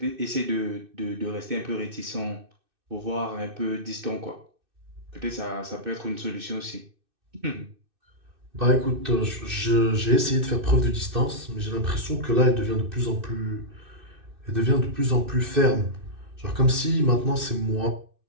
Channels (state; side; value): late; left; 2.6 ms